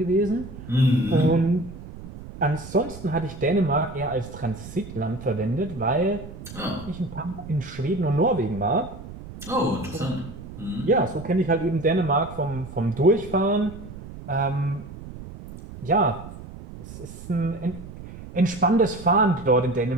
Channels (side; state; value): right; noise; rumble, 14 dB below the sound